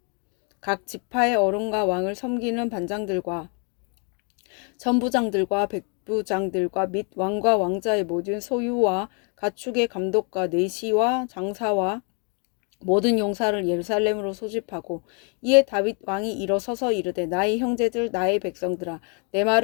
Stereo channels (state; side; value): quieter; right; 37.8 dB